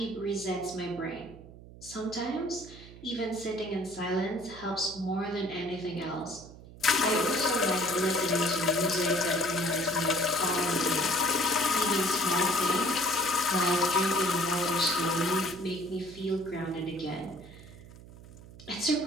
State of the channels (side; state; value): right; noise; hum, 18 dB below the sound